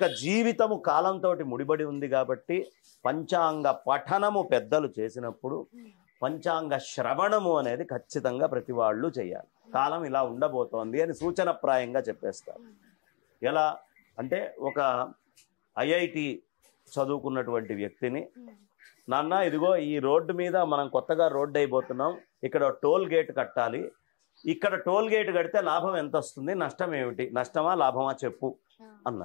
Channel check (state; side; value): quieter; right; 32.5 dB